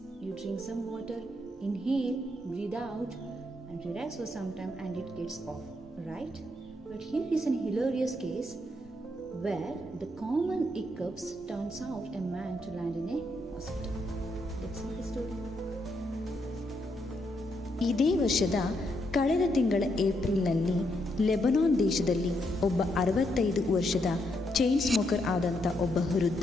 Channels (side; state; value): both; normal; correlation 0.78